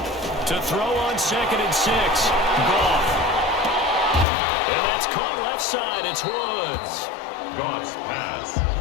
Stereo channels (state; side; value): drops out; right; at 4.2 s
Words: To throw on 2nd and 6. Goff. And that's caught left side. It's Woods. Goff's pass